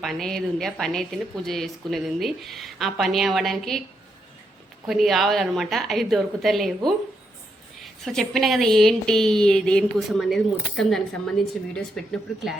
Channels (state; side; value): normal; both; correlation 0.80